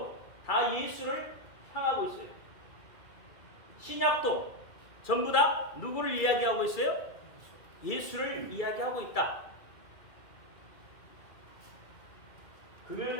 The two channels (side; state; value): right; late; 2.3 ms